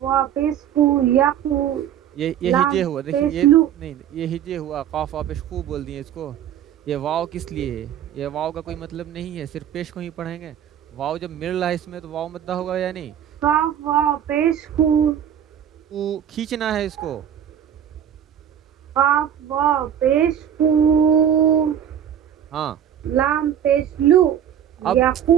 وا پیش کو یقو. یہ ہجے لام ہوا. دیکھیے پیش یہ لو. نہیں یہ ہجے ہوا. قاف واپش خوب بول دیے اس کو. یہ واو کس لیے ہے؟ یہ واو کا کوئی مطلب نہیں ہے. صرف پیش کو ہی پڑھیں گے. واو جب مل رہا ہے اس میں تو واو مدہ ہوگا یا نہیں. قاف وا پیش کو. کھینچنا ہے اس کو. قاف وا پیش کو. ہاں لام پیش لو. اب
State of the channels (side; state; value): left; quieter; 9.6 dB